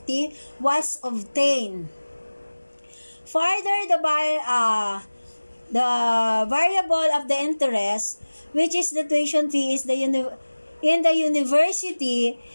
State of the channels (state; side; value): inverted; both; correlation -1.00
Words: was obtained. Further, the variable of the interest, which is the tuition fee, is in the university,